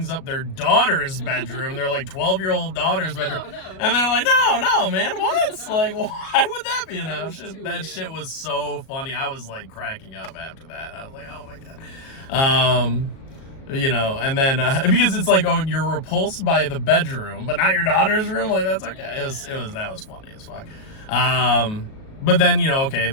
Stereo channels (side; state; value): right; late; 37 ms